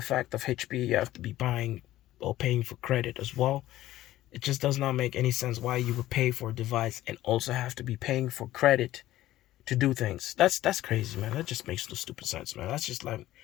fact of HP. You have to be buying or paying for credit as well. It just does not make any sense why you would pay for a device and also have to be paying for credit to do things. That's crazy, man. That just makes no stupid sense, man. That's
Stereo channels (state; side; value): quieter; right; 14.9 dB